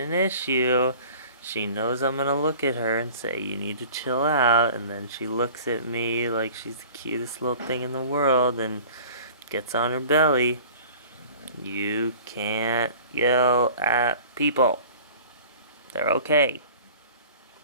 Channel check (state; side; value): inverted; both; correlation -0.44